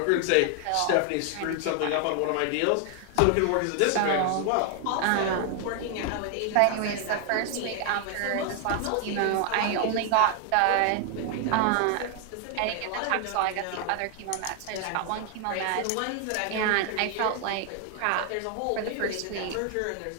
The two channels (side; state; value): both; different; correlation 0.00